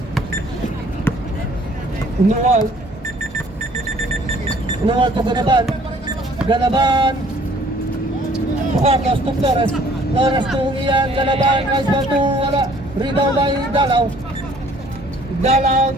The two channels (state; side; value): normal; both; correlation 0.57